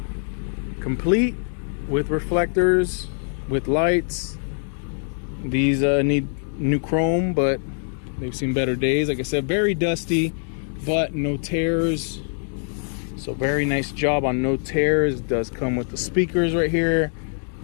Complete. with reflectors, with lights. These need new chrome, but they've seen better days. Like I said, very dusty, but no tears. So very nice job on no tears. It does come with the speakers right here.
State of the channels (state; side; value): silent; right; 58 dB below the other